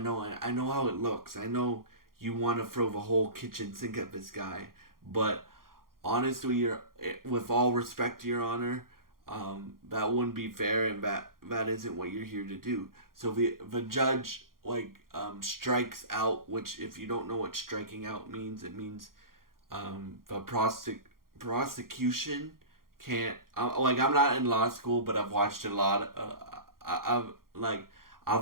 how it looks. I know you want to throw the whole kitchen sink at this guy, but honestly, with all respect to your honor, that wouldn't be fair, and that isn't what you're here to do. So the judge strikes out, which if you don't know what striking out means, it means the prosecution can't. I'm not in law school, but I've watched a lot. I've like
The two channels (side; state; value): left; late; 0.92 ms